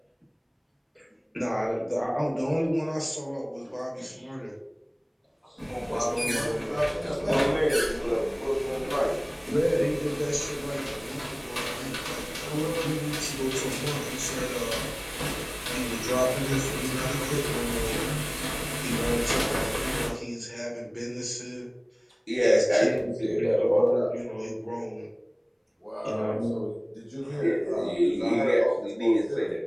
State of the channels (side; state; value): both; identical; correlation 1.00